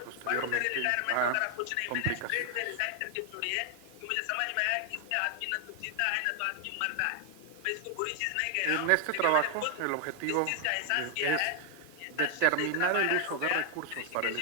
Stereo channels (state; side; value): different; both; correlation 0.00